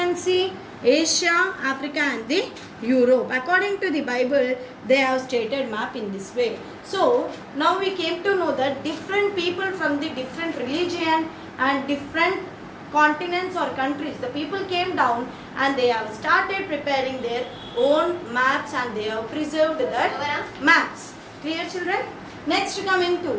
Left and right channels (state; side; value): identical; both; correlation 1.00